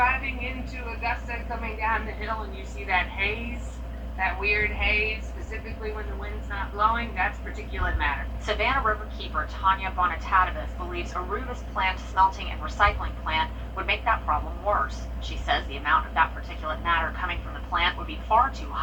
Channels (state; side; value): identical; both; correlation 1.00